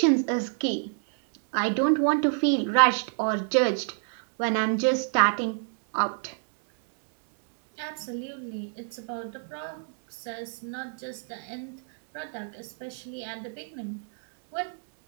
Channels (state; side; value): silent; left; digital silence